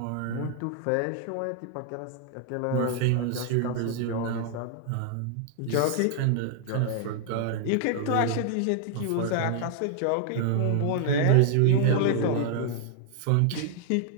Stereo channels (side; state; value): both; different; correlation 0.00